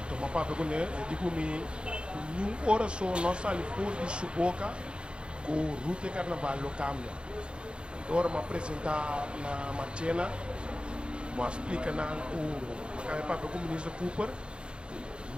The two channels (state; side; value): late; left; 0.055 ms